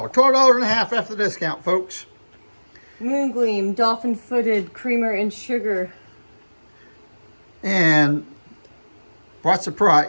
$12.50 after the discount, folks. Moongleam dolphin-footed creamer and sugar. And what's the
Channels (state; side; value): inverted; both; correlation -1.00